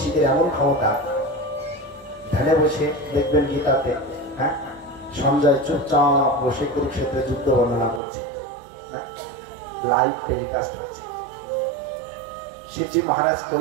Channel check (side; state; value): left; drops out; at 8.0 s